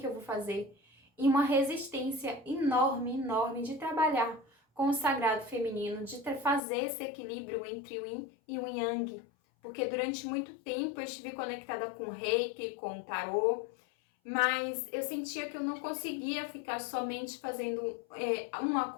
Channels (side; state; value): right; drops out; at 6.6 s